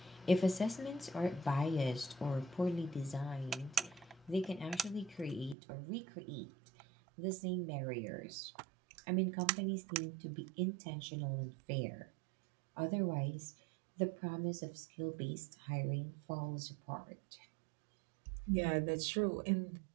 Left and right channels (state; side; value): drops out; left; at 5.6 s